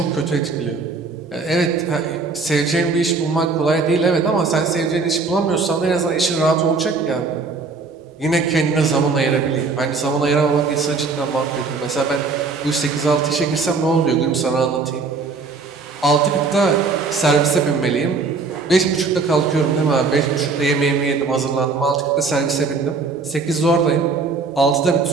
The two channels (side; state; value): left; quieter; 4.4 dB